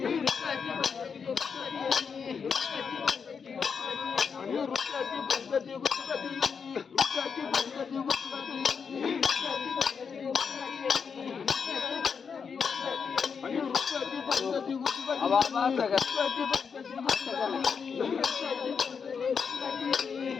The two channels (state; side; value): quieter; right; 6.1 dB